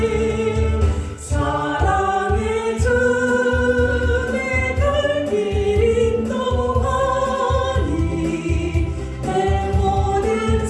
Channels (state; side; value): identical; both; correlation 1.00